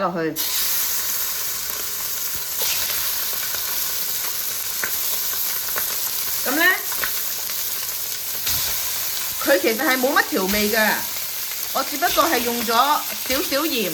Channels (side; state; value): both; identical; correlation 1.00